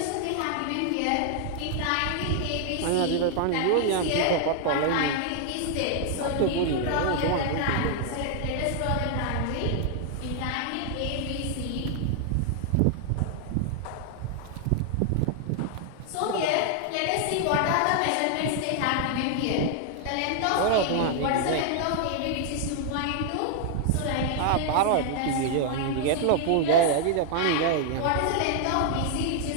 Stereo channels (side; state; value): both; different; correlation 0.00